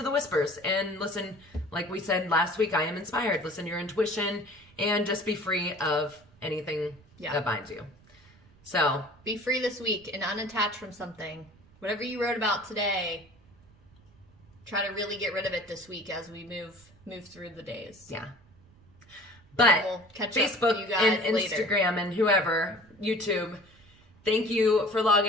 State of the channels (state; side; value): noise; right; rumble, 27 dB below the sound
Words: the whispers and listen. Like we said last week, I am inspired. Listen to your intuition and just be free of anything that binds you. So be free this week and unattach from something. Whatever you wrote about today, try to really get rid of it this week as we move through the days. Yeah. But we'll catch Facebook up with you guys and later. Instagram and whoever, YouTube, thank you for